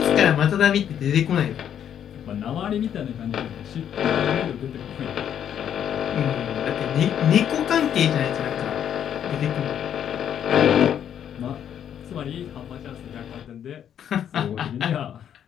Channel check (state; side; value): quieter; right; 9.4 dB